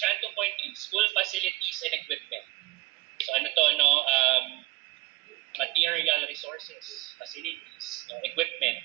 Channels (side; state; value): left; quieter; 19.9 dB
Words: 2.3, school facilities and equipment. So, material resources, facilities,